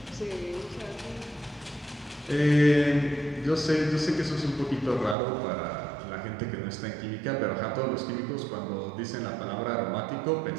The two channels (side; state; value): left; drops out; at 5.2 s